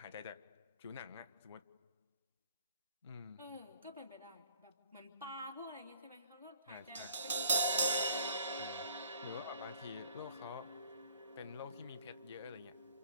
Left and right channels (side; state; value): both; inverted; correlation -0.58